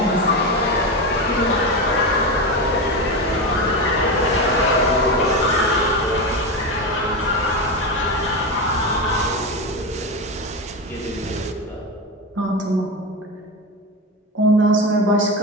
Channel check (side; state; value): both; normal; correlation 0.17